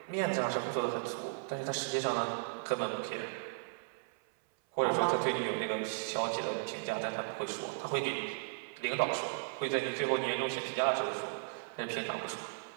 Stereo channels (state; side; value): silent; left; 54 dB below the other